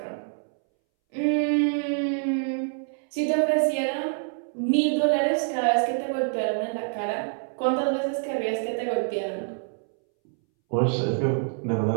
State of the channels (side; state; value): left; silent; 61 dB below the other